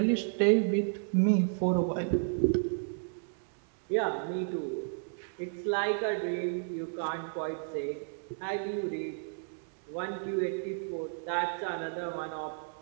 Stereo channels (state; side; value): silent; left; digital silence